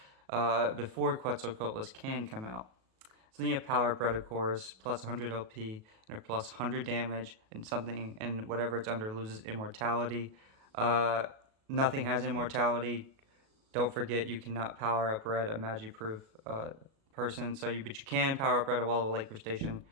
before Quetzalcoatlus can come out. So then you have Power Bread, of course, plus 100 LP and plus 100 damage, and whatever it's under loses immortality. Nothing has immortality. Don't forget, you cannot power up Red, a magic-proof person. But you can power up Red a Wall of Lake Station,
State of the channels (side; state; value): left; late; 37 ms